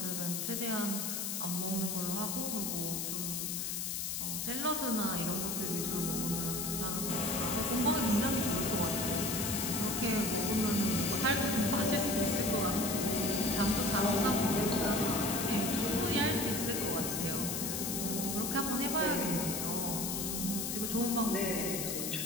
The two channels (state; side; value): noise; left; hiss, 2 dB below the sound